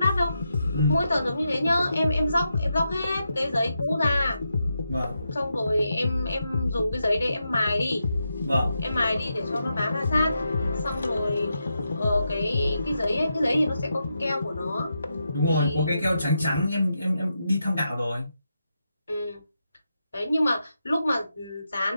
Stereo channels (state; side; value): inverted; both; correlation -0.85